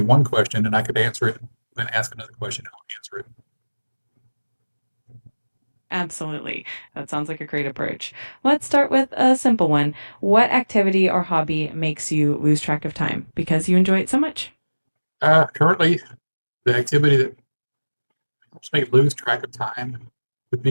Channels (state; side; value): inverted; both; correlation -1.00